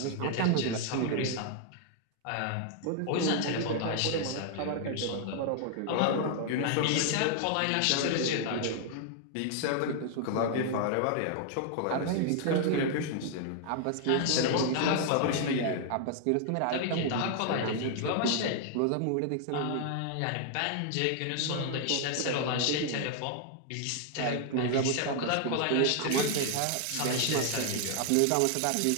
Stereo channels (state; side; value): different; both; correlation 0.00